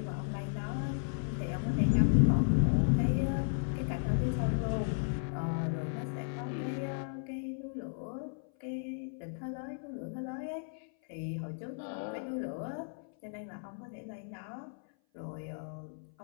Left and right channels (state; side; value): silent; right; 55 dB below the other